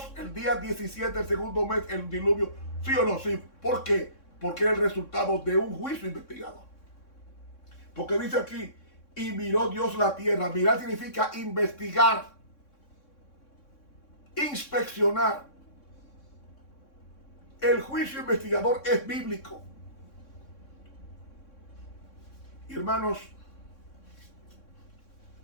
el día 17 del segundo mes el diluvio? ¿Sí o no? Sí. ¿Por qué? Porque era el resultado de un juicio investigado. Porque dice aquí, y miró Dios la tierra. Mirar significa investigar, inspeccionar. El juicio investigador es bíblico. Hermanos,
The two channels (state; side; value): late; right; 3.6 ms